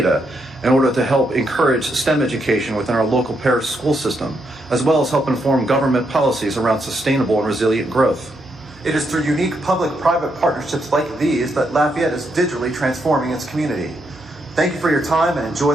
in order to help encourage STEM education within our local parish school system, as well as help inform government policies around sustainable and resilient growth. It is through unique public-private partnerships like these that Lafayette is digitally transforming its community. Thank you for your time and enjoy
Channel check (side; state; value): right; noise; hum, 24 dB below the sound